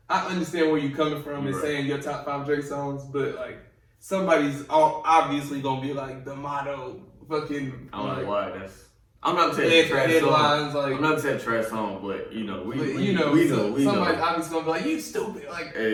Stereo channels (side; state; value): both; identical; correlation 1.00